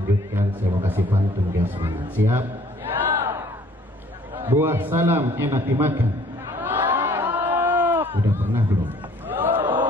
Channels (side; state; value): both; normal; correlation 0.57